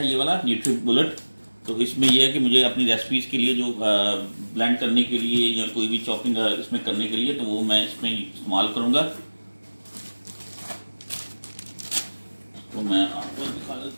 ये वाला न्यूट्री बुलेट। तो इसमें ये है कि मुझे अपनी रेसिपीज़ के लिए जो ब्लेंड करने के लिए या कोई भी चॉपिंग इसमें करने के लिए, तो वो मैं इसमें इस्तेमाल करूँगा। तो मैं आपको दिखा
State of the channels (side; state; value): both; inverted; correlation -1.00